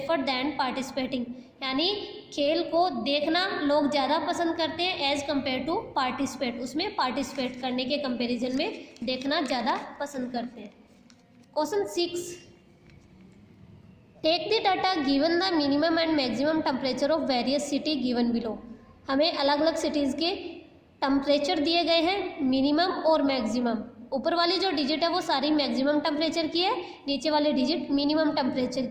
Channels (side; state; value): both; identical; correlation 1.00